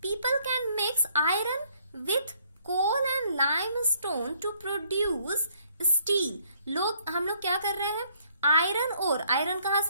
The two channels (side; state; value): both; inverted; correlation -0.66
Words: people can mix iron with coal and limestone to produce steel. हम लोग क्या कर रहे हैं, आयरन और आयरन कहाँ